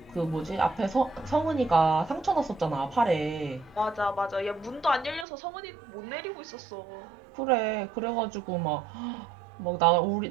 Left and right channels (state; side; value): drops out; left; at 5.2 s